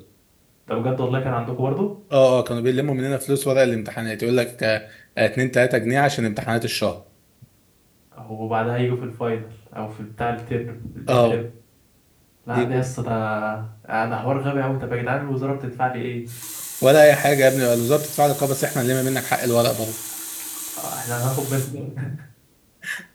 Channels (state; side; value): identical; both; correlation 1.00